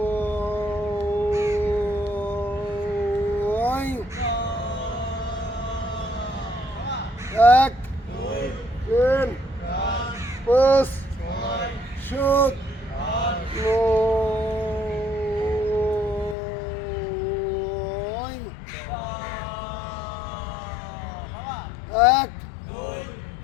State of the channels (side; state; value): right; drops out; at 16.4 s